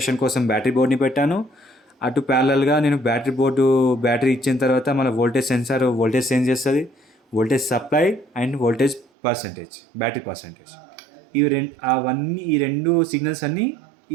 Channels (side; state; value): left; drops out; at 9.1 s